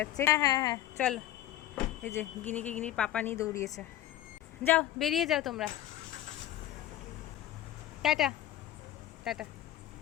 হ্যাঁ হ্যাঁ হ্যাঁ চলো। এই যে গিনিকে গিনির পাপা নিয়ে দৌড়িয়েছে। যাও, বেরিয়ে যাও তোমরা। Tata tata.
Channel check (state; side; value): quieter; right; 13.1 dB